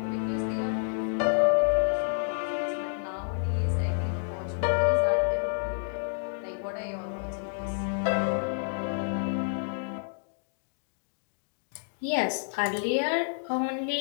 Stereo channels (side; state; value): right; silent; digital silence